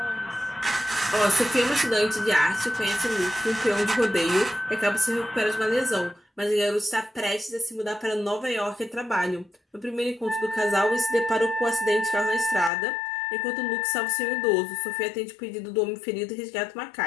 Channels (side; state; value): right; drops out; at 12.7 s